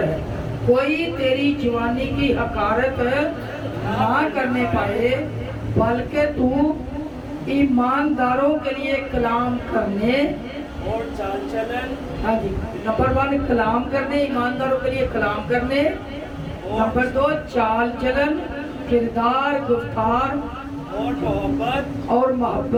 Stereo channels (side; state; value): both; identical; correlation 1.00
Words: है। कोई तेरी जवानी की हकारत ना करने पाए, बल्कि तू ईमानदारों के लिए कलाम करने और चाल चलन, हाँ जी, नंबर 1 कलाम करने, ईमानदारों के लिए कलाम करने। नंबर 2 चाल चलन, किरदार, गुफ्तार और मोहब्बत और